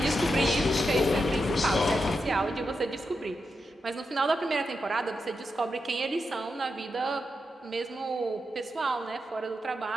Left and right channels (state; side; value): normal; both; correlation 0.87